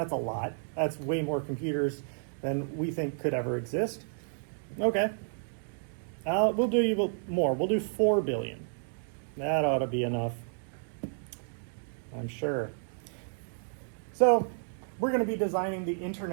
lot. That's way more computers than we think could ever exist. Okay. We'll do more. We'll do 4 billion. That ought to be enough, I'm sure. So we're going to be designing the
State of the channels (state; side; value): silent; left; digital silence